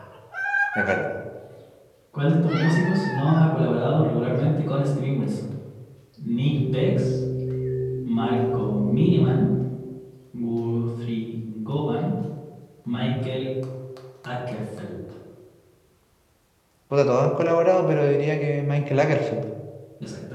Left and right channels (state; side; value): identical; both; correlation 1.00